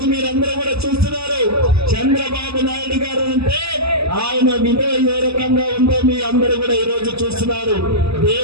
మీరందరూ కూడా చూస్తున్నారు. చంద్రబాబు నాయుడు గారు అంటే ఆయన విలువ ఏ రకంగా ఉందో మీ అందరూ కూడా ఈ రోజు చూస్తున్నారు.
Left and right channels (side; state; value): left; late; 0.79 ms